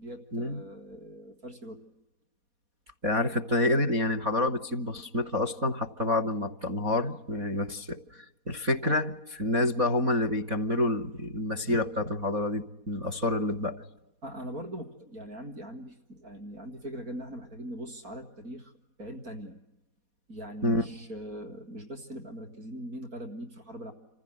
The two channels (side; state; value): left; late; 4.2 ms